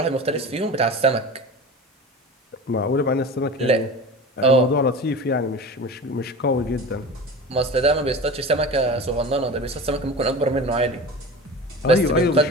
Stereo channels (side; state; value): both; normal; correlation 0.32